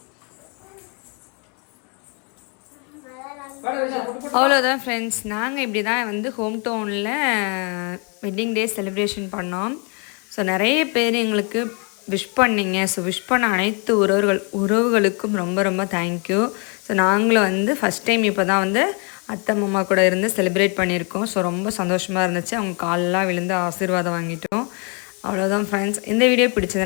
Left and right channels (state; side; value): quieter; right; 35.3 dB